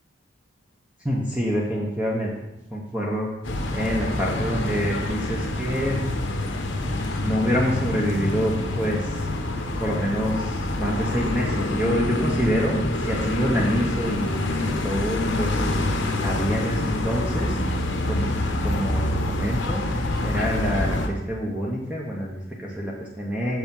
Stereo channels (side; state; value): both; normal; correlation 0.70